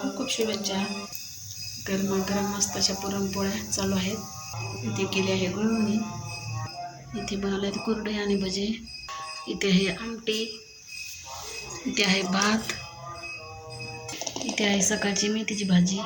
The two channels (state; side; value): identical; both; correlation 1.00